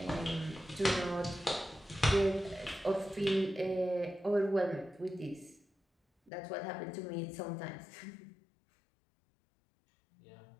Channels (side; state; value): right; drops out; at 6.3 s